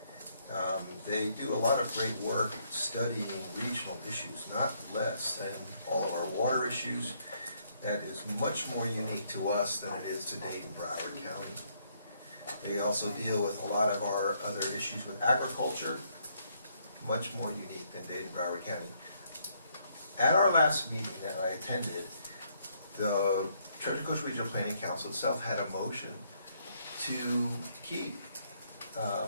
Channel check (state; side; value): inverted; both; correlation -0.71